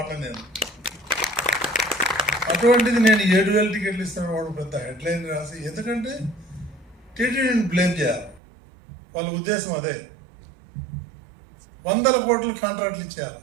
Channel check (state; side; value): drops out; left; at 8.4 s